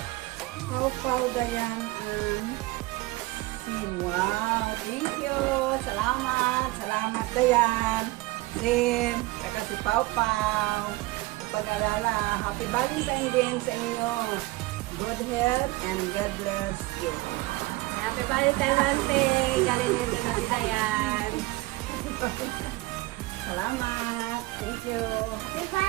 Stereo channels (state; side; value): quieter; left; 20.6 dB